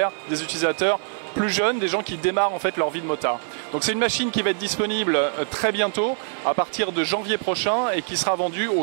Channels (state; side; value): silent; left; 63 dB below the other